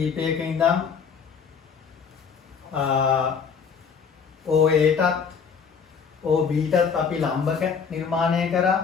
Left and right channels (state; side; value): quieter; right; 6.2 dB